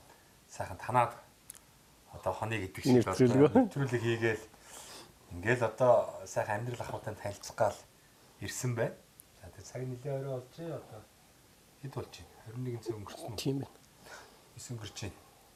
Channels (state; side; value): identical; both; correlation 1.00